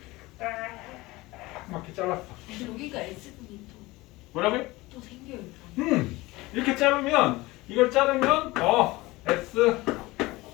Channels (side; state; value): right; quieter; 20.6 dB